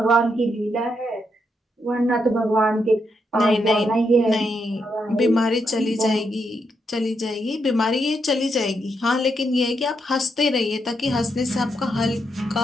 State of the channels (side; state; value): both; normal; correlation 0.80